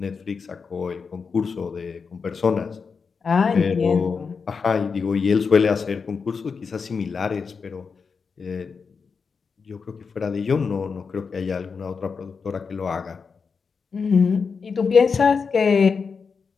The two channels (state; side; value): quieter; right; 5.4 dB